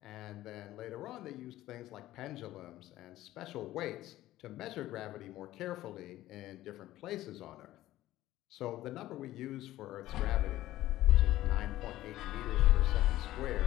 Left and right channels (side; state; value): right; quieter; 15.1 dB